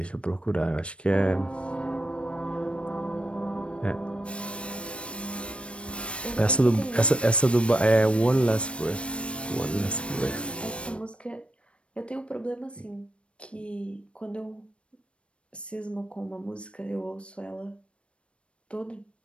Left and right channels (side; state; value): right; late; 0.060 ms